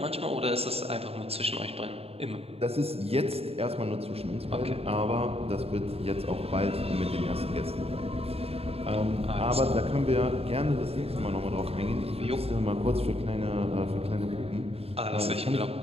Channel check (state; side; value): late; left; 0.29 ms